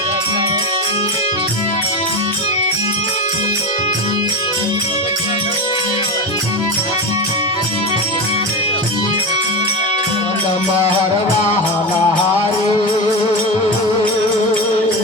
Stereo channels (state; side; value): normal; both; correlation 0.20